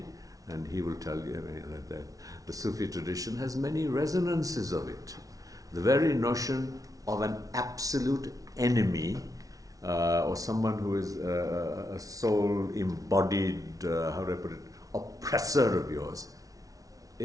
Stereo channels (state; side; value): late; left; 0.18 ms